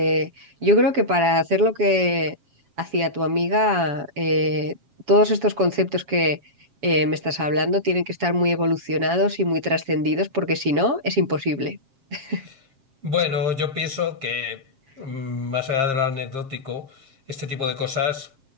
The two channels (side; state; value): left; late; 7.5 ms